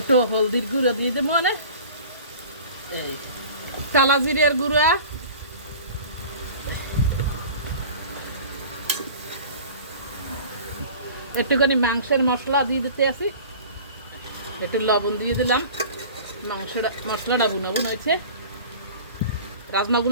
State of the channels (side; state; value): both; inverted; correlation -0.42